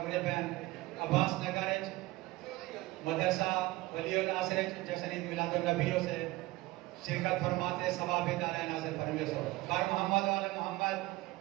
پہن عباس نگر مدرسہ ولی الناصر جشن عید میلاد النبی سے شرکت فرماتے ثواب دار نازل فرمے سو بار محمد وعلی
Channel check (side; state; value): left; quieter; 19.7 dB